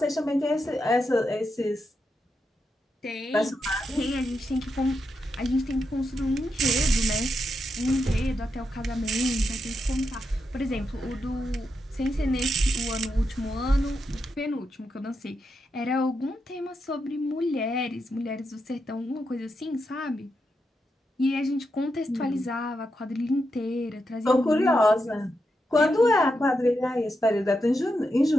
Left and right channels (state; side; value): normal; both; correlation 0.85